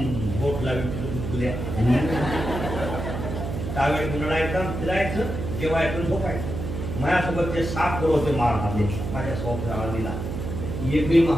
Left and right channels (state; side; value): noise; right; hum, 5 dB below the sound